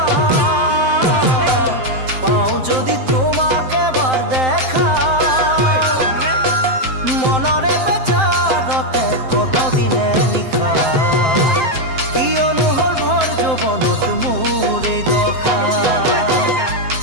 পাও যদি তোমাকে এবার দেখা, মনরে বেচারতে কত দিনে নিশা, কিয়নো হল ভৰ যৌৱনত মোৰ এই দশা।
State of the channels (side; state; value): left; late; 7.7 ms